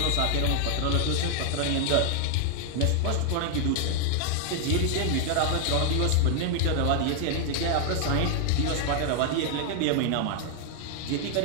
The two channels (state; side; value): different; both; correlation 0.00